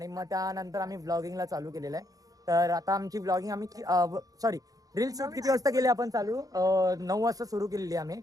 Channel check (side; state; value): left; late; 0.17 ms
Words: मग त्यानंतर आम्ही व्लॉगिंगला चालू केलेलं आहे. तर आता आमची व्लॉगिंग आम्ही सॉरी रील शूट किती वाजता केली आपण चालू? 9 वाजता सुरू केलेली आम्ही.